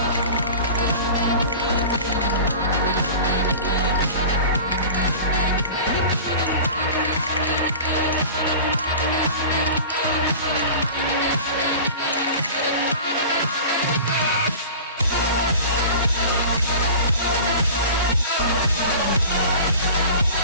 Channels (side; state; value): both; inverted; correlation -0.37